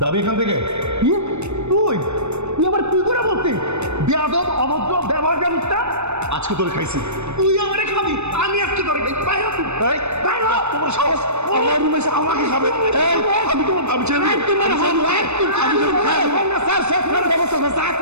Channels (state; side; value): late; left; 0.81 ms